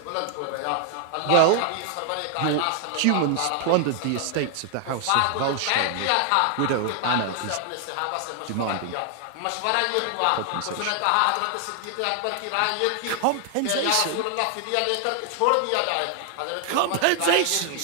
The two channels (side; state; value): both; different; correlation 0.00